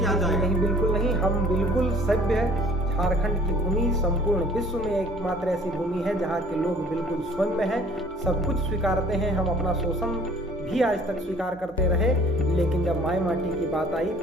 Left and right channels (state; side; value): noise; right; hum, 23 dB below the sound